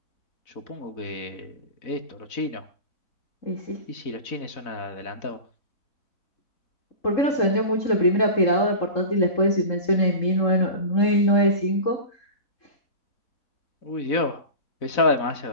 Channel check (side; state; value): right; late; 3.7 ms